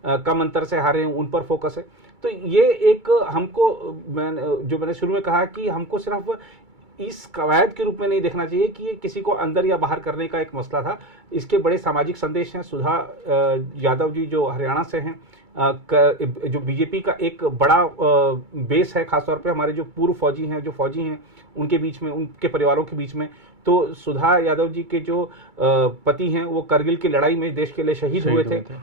कम अंतर से हारे हैं, उन पर फोकस है। तो ये एक हमको, मैंने शुरू में कहा कि हमको सिर्फ इस कवायद के रूप में नहीं देखना चाहिए कि ये किसी को अंदर या बाहर करने का एक मसला था। इसके बड़े सामाजिक संदेश हैं। सुधा यादव जी जो हरियाणा से हैं, जो बीजेपी का एक बड़ा बेस है, खासतौर पे हमारे जो पूर्व फौजी हैं, जो फौजी हैं, उनके बीच में, उनके परिवारों के बीच में। तो सुधा यादव जी के जो पति हैं, वो करगिल की लड़ाई में देश के लिए शहीद हुए थे।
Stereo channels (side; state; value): left; late; 2.3 ms